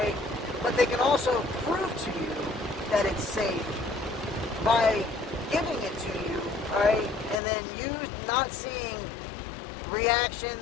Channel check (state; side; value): drops out; right; at 7.4 s